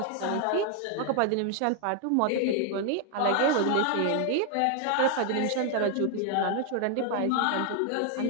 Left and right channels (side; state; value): both; different; correlation 0.00